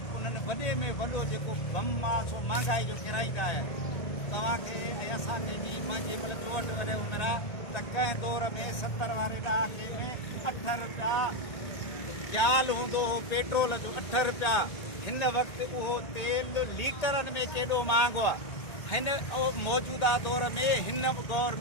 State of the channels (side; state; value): right; late; 1.8 ms